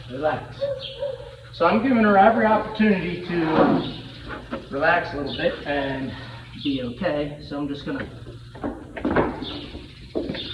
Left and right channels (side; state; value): both; identical; correlation 1.00